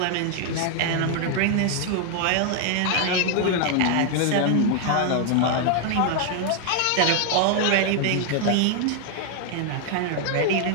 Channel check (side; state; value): both; different; correlation 0.00